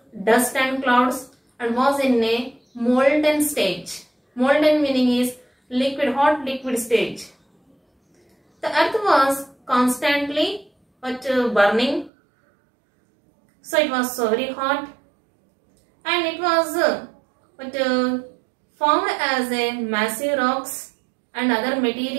dust and clouds and was in a molten stage. Molten meaning is liquid, hot liquid stage. The earth was constantly burning. So it was so very hot, and it was formed as a massive rocks and other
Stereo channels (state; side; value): drops out; left; at 12.1 s